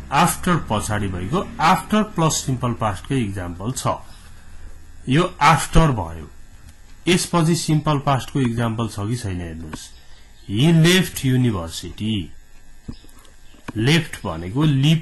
आफ्टर पछाडी भएको आफ्टर प्लस सिम्पल पास्ट को एक्जाम्पल छ। यो आफ्टर भयो। यसपछि सिम्पल पास्ट को एक्जाम्पल छ कि छैन हेर्नुस्। ही लेफ्ट युनिभर्सिटी। लेफ्ट भनेको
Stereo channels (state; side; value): identical; both; correlation 1.00